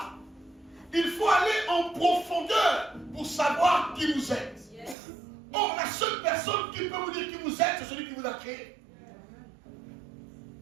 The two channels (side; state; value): left; drops out; at 5.0 s